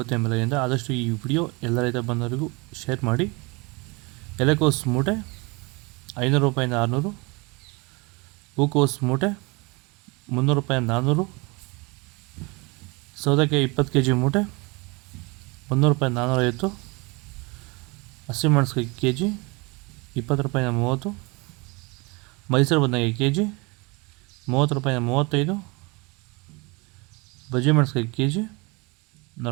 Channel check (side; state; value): left; quieter; 27.4 dB